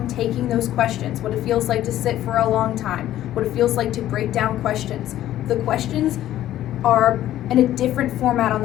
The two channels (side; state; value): right; quieter; 13.1 dB